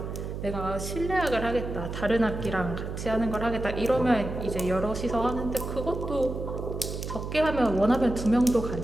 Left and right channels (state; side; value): noise; right; hum, 6 dB below the sound